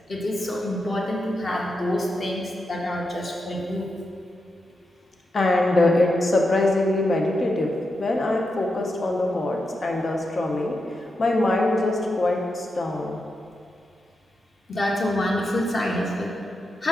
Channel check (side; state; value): both; normal; correlation 0.87